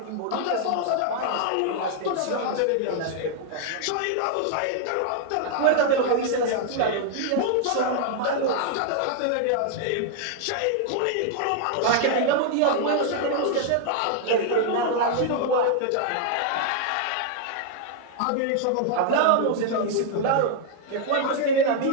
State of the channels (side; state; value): both; different; correlation 0.00